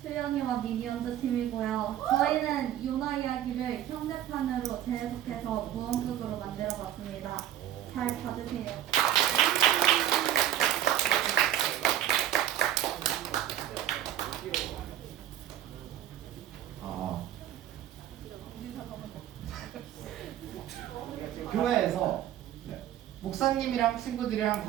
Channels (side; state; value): left; quieter; 11.9 dB